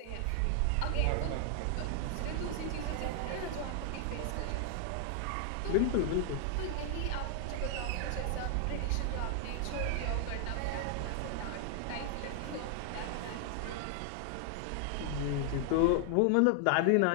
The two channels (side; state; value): both; different; correlation 0.00